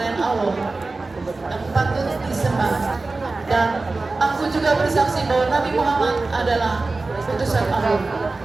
Allah yang patut disembah, dan aku juga bersaksi bahwa Nabi Muhammad adalah utusan Allah.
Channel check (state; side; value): quieter; left; 3.5 dB